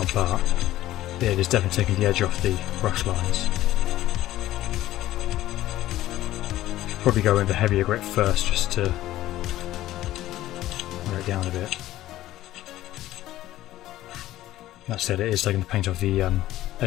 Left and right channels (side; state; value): right; quieter; 14.7 dB